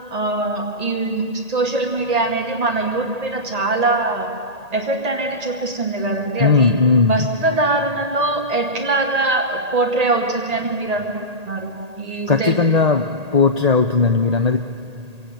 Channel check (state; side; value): late; left; 1.8 ms